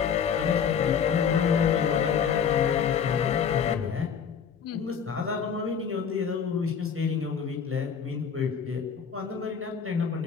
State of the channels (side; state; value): right; quieter; 7.2 dB